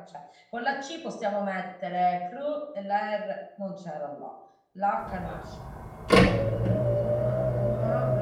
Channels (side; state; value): both; identical; correlation 1.00